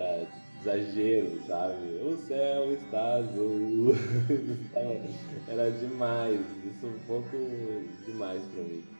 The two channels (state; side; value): inverted; both; correlation -1.00